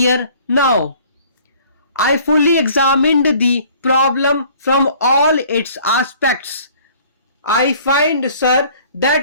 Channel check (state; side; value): inverted; both; correlation -0.54